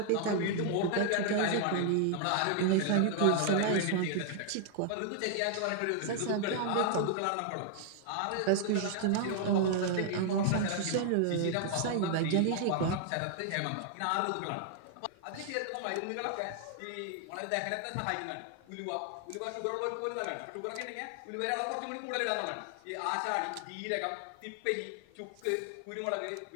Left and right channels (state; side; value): different; both; correlation 0.00